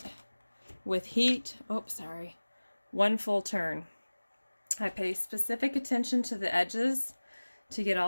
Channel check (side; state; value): both; inverted; correlation -1.00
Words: with heat. Oh, sorry. One full turn. I pay specific attention to the edges to get